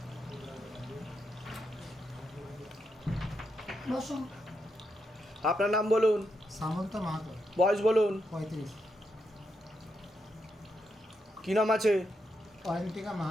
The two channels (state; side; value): normal; both; correlation 0.82